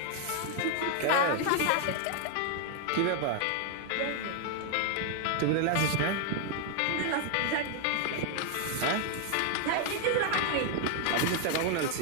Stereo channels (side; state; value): both; different; correlation 0.00